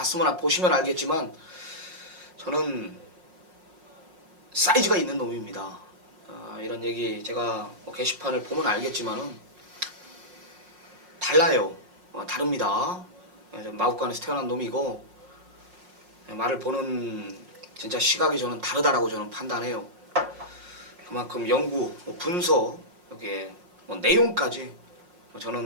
보시면 알겠지만 저는 사이즈가 있는 놈입니다. 이런 얘기 제가 뭐 게시판을 보면 알겠지만은 달라요. 다릅니다. 마구간에서 태어난 놈이고 말을 보는 진짜 시각이 저는 다르다라고 저는 판단해요. 그만큼 연구, 분석, 여기에 뭐 내용까지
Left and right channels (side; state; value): left; late; 5.5 ms